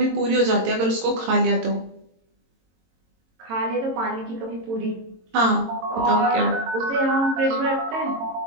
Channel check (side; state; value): left; late; 22 ms